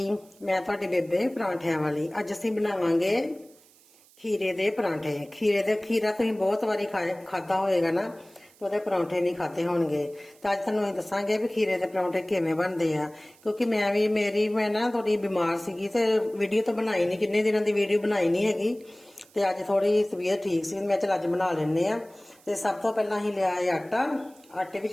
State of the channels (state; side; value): noise; right; hiss, 28 dB below the sound